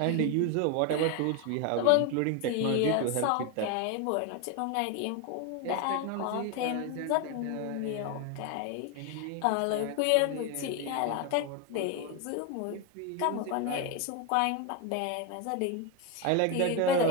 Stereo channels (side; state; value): both; different; correlation 0.01